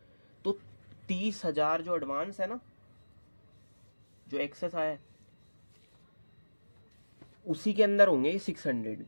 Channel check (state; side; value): inverted; both; correlation -1.00